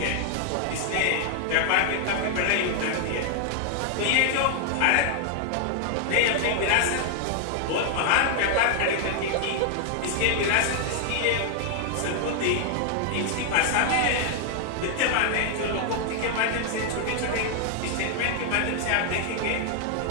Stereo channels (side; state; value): both; different; correlation 0.00